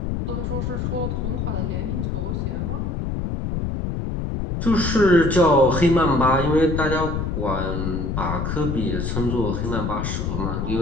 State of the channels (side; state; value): left; noise; rumble, 2 dB below the sound